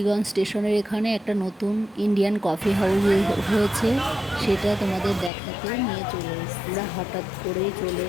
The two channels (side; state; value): right; drops out; at 5.3 s